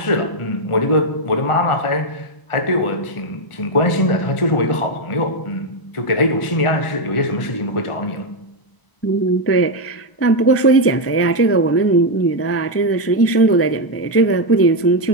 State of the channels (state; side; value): late; right; 1.0 ms